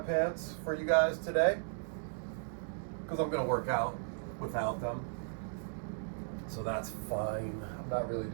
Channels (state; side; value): silent; left; digital silence